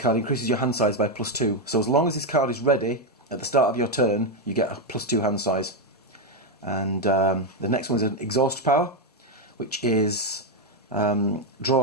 increases your hand size by +2. So as long as this card is ready at the start of your turn, you get a +2 hand size. And the next one is an exhaust power, which is draw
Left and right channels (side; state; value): both; normal; correlation 0.05